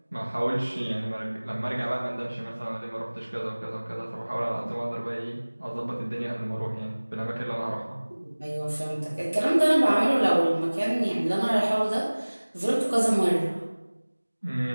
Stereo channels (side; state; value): both; inverted; correlation -1.00